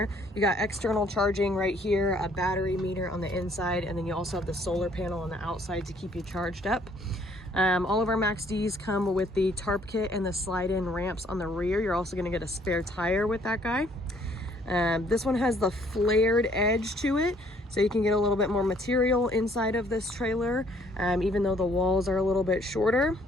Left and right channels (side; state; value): both; normal; correlation 0.63